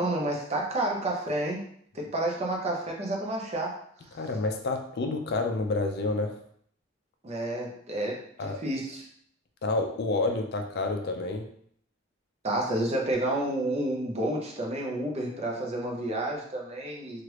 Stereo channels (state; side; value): normal; both; correlation 0.31